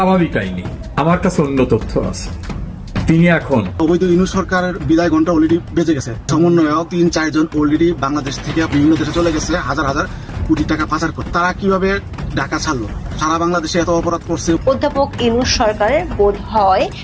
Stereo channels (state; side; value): identical; both; correlation 1.00